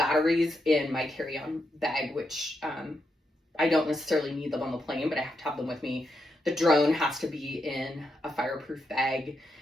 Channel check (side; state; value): both; normal; correlation 0.83